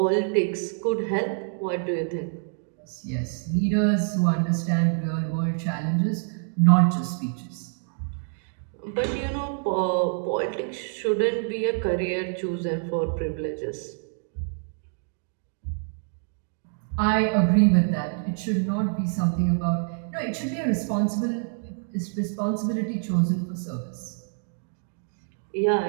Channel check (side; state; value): left; silent; 56 dB below the other